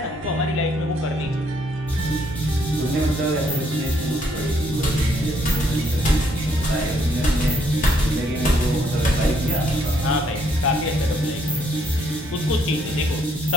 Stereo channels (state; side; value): normal; both; correlation 0.69